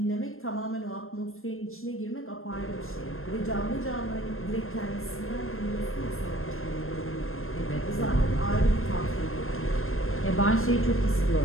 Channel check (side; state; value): right; late; 0.61 ms